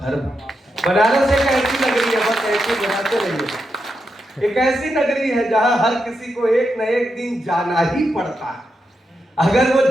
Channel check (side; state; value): both; normal; correlation 0.85